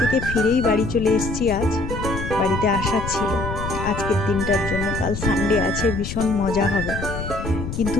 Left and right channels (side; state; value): left; noise; rumble, 6 dB below the sound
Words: ফিরেই বাড়ি চলে এসেছি। আজ বাড়িতে আসার ছিল আজকের দিনটার জন্য। কাল সানডে আছে, ভীষণ মজা হবে। কিন্তু